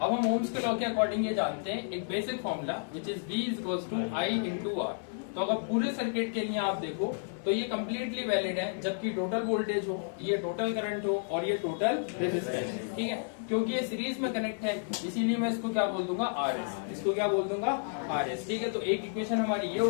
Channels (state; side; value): silent; right; 57 dB below the other